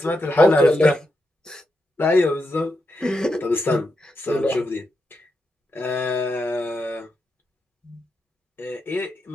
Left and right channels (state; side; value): normal; both; correlation 0.85